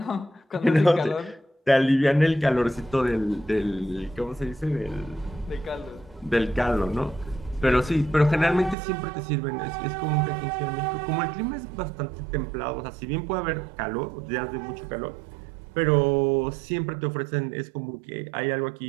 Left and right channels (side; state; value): left; drops out; at 8.8 s